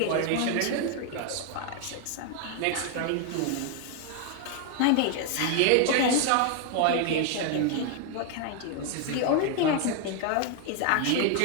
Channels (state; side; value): different; both; correlation 0.01